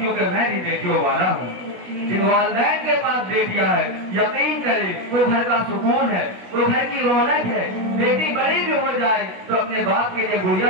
میں بھی بیٹیوں والا ہوں۔ جن والدین کے پاس بیٹیاں ہیں، یقین کرے وہ گھر کا سکون ہے، وہ گھر کی رونق ہے۔ بیٹی بڑی بھی ہو جائے تو اپنے باپ کے لیے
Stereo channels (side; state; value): left; late; 16 ms